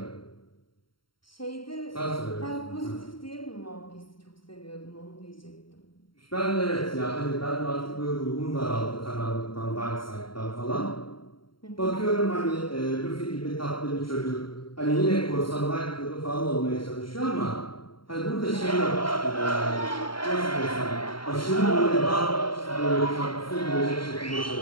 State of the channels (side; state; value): right; late; 0.73 ms